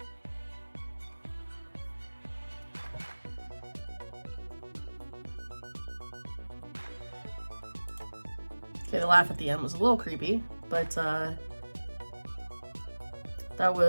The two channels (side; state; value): both; inverted; correlation -1.00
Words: Okay, the laugh at the end was a little creepy, but that